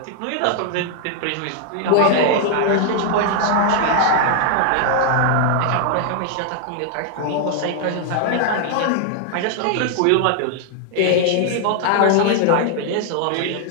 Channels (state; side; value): different; both; correlation 0.00